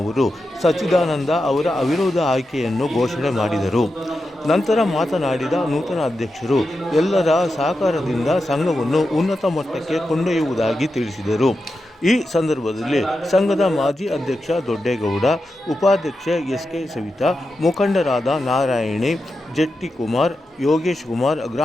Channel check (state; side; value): normal; both; correlation 0.89